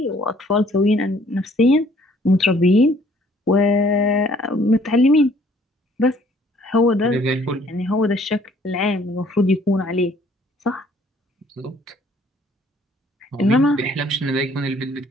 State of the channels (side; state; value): both; normal; correlation 0.60